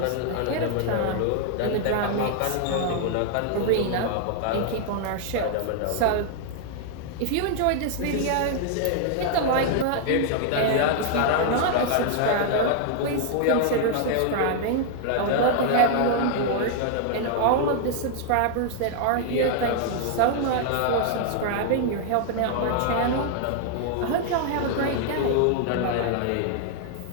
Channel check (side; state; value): both; different; correlation 0.00